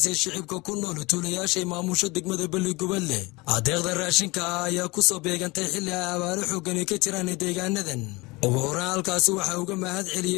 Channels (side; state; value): right; quieter; 23.9 dB